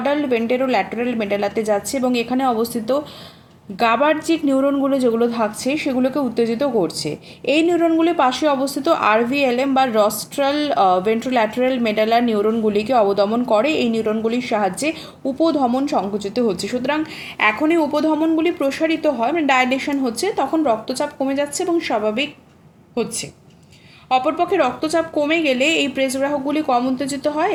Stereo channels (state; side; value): identical; both; correlation 1.00